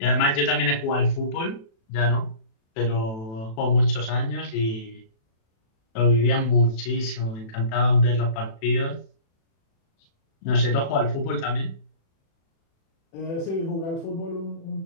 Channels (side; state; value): right; late; 36 ms